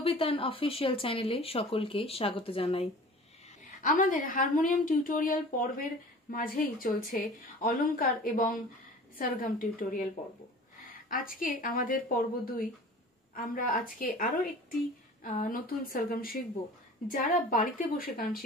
অফিসিয়াল চ্যানেলে সকলকে স্বাগত জানাই। আমাদের হারমোনিয়াম টিউটোরিয়াল পর্বের মাঝেই চলছে অলংকার এবং সরগম টিউটোরিয়াল পর্ব। আজকে আমাদের পর্ব 2। আমরা আজকে আরো একটি নতুন সরগম শিখব। যারা বাড়িতে বসে গান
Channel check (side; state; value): both; normal; correlation 0.42